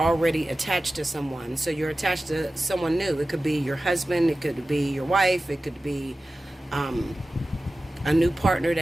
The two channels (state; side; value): normal; both; correlation 0.95